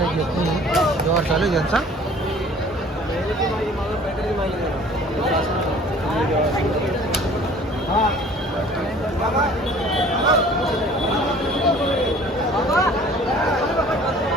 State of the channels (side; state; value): both; normal; correlation 0.50